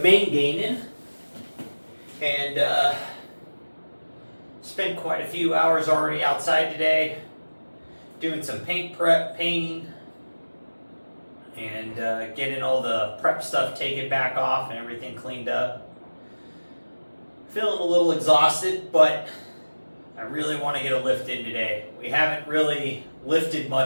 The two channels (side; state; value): both; inverted; correlation -1.00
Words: gaining, and spent quite a few hours already outside today, doing some paint prep, painting, and getting all the prep stuff taken back off and everything cleaned up. Feeling a little exhausted, but I really want to get a lift in today. We haven't really lifted